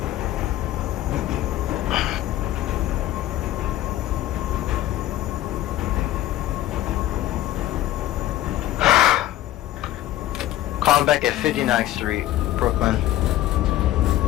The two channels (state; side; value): quieter; right; 14.2 dB